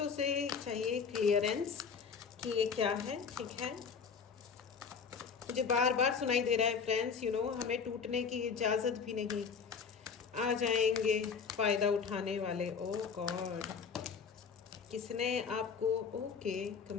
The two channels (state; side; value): quieter; right; 6.0 dB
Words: से चाहिए क्लियरेंस कि ये क्या है, ठीक है। मुझे बार बार सुनाई दे रहा है फ्रेंड्स, हमें टूटने की इजाज़त भी नहीं। आ जाएंगे फ़ायदा उठाने वाले। ओह गॉड, किसने आपको, ओके,